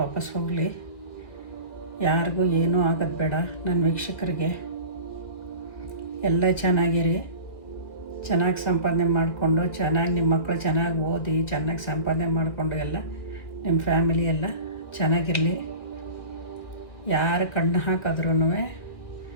ವಾಪಸ್ ಹೋಗಲಿ. ಯಾರಿಗೂ ಏನೂ ಆಗೋದು ಬೇಡ. ನನ್ನ ವೀಕ್ಷಕರಿಗೆ ಎಲ್ಲ ಚೆನ್ನಾಗಿರಿ, ಚೆನ್ನಾಗಿ ಸಂಪಾದನೆ ಮಾಡಿಕೊಂಡು, ಚೆನ್ನಾಗಿ ನಿಮ್ಮ ಮಕ್ಕಳು ಚೆನ್ನಾಗಿ ಓದಿ ಚೆನ್ನಾಗಿ ಸಂಪಾದನೆ ಮಾಡಿಕೊಂಡು ಎಲ್ಲ ನಿಮ್ಮ ಫ್ಯಾಮಿಲಿ ಎಲ್ಲ ಚೆನ್ನಾಗಿರಲಿ. ಯಾರು ಕಣ್ಣು ಹಾಕಿದ್ರೂ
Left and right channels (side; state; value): right; late; 1.9 ms